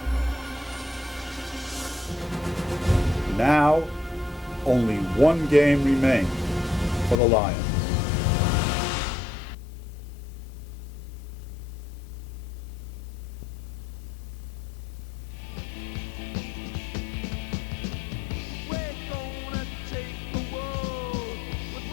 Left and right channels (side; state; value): right; drops out; at 7.2 s